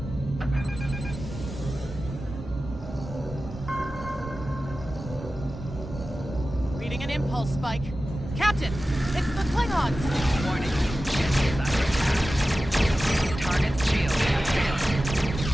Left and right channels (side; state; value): both; normal; correlation 0.94